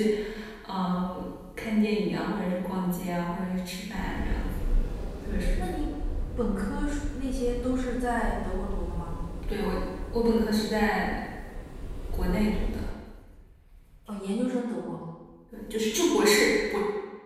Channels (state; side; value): identical; both; correlation 1.00